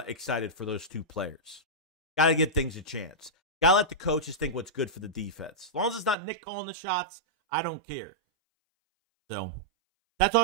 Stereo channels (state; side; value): drops out; left; at 6.2 s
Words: for those two players. Got to give things a chance. Got to let the coaches think what's good for the defense. As long as it's not Nick calling the shots, I don't care. So, that's all